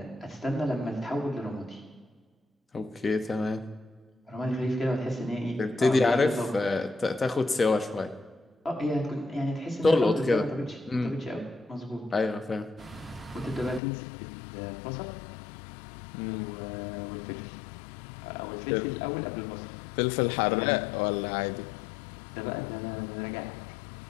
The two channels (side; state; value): right; drops out; at 13.8 s